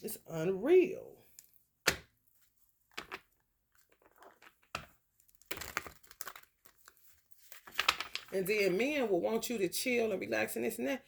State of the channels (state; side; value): identical; both; correlation 1.00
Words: It's unreal. And then men will want you to chill and relax and this and that.